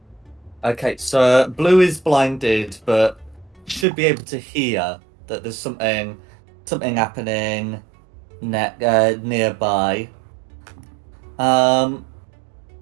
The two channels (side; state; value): left; drops out; at 3.9 s